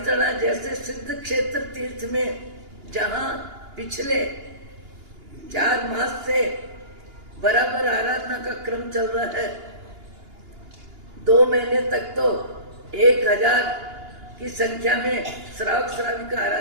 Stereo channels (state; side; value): late; left; 2.9 ms